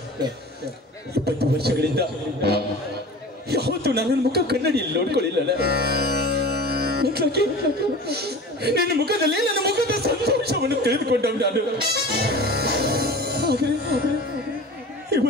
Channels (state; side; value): normal; both; correlation 0.38